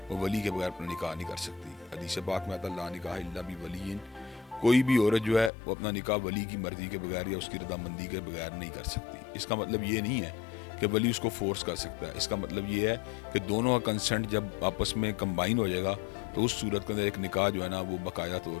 वो वली के बगैर अपना निकाह नहीं कर सकती। हदीस पाक में आता ला निकाह इल्ला बि वलीइन, कोई भी औरत जो है वो अपना निकाह वली की मर्जी के बगैर या उसकी रजामंदी के बगैर नहीं कर सकती। इसका मतलब ये नहीं है कि वली उसको फोर्स कर सकता है। इसका मतलब ये है कि दोनों का कंसेंट जब आपस में कंबाइन हो जाएगा तो उस सूरत के अंदर एक निकाह जो है ना वो बाकायदा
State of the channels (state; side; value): drops out; right; at 5.5 s